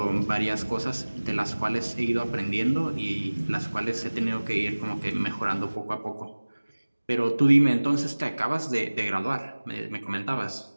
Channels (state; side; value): inverted; both; correlation -1.00